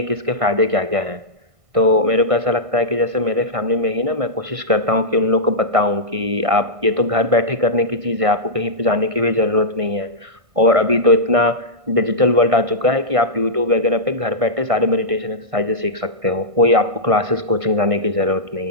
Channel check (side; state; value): left; late; 1.6 ms